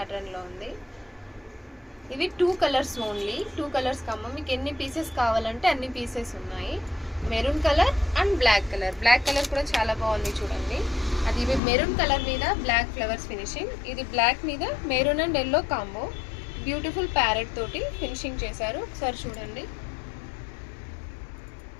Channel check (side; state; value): right; drops out; at 11.6 s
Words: ఉంది. ఇవి 2 కలర్స్ ఓన్లీ, 2 కలర్స్ కమ్మ. మీకు ఎన్ని పీసెస్ కావాలంటే అన్ని పీసెస్ ఉన్నాయి. Maroon colour and black colour. Black colour కూడా చాలా బాగుంది చూడండి. అది ఇవి మెరూన్ కలర్ మీద బ్లాక్ ఫ్లవర్స్ ఫినిషింగ్, ఇది బ్లాక్ మీద maroon and yellow combo. Beautiful parrot తోటి ఫినిషింగ్ చేశారు. ఒకసారి చూడండి.